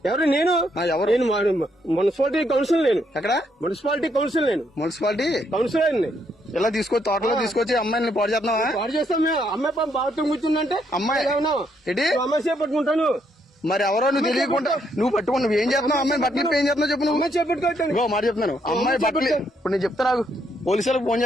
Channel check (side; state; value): both; normal; correlation 0.74